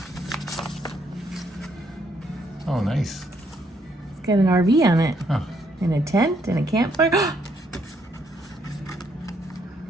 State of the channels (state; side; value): normal; both; correlation 0.72